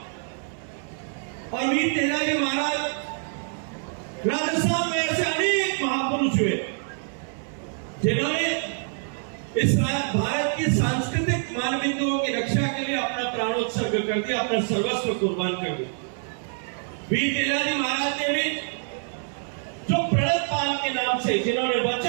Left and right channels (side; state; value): left; silent; 61 dB below the other